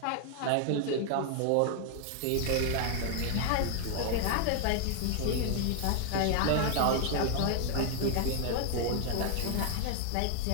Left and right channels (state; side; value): different; both; correlation 0.00